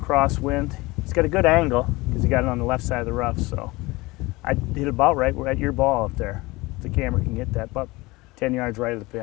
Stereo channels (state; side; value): quieter; right; 22.0 dB